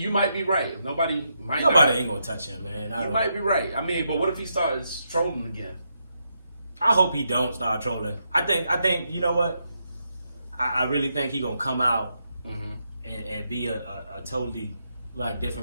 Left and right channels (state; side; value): inverted; both; correlation -0.81